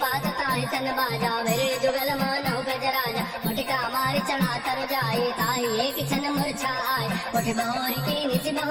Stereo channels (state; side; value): identical; both; correlation 1.00